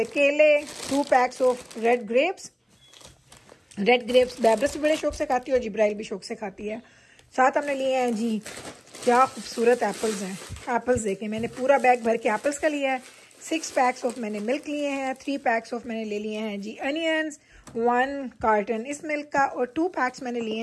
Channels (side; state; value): both; identical; correlation 1.00